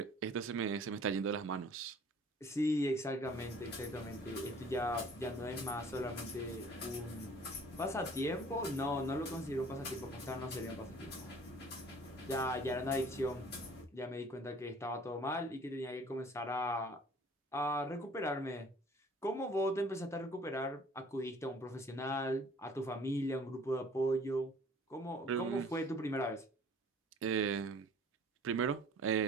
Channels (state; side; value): normal; both; correlation 0.52